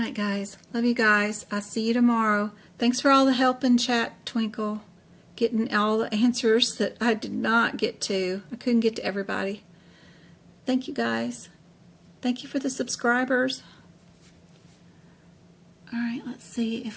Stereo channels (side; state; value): both; identical; correlation 1.00